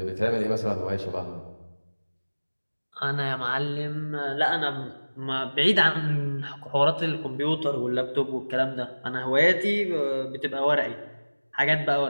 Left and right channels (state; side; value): inverted; both; correlation -1.00